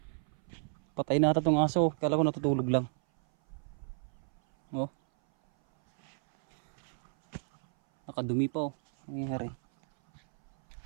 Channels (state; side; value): silent; left; 57 dB below the other